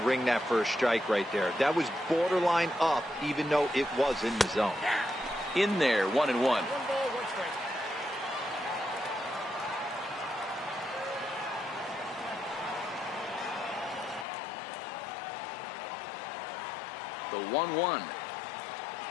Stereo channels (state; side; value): drops out; right; at 14.2 s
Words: ring that first strike right there. That was borderline up, even though it was in the zone. in there, 1-1. One ball, one strike. The 1-1.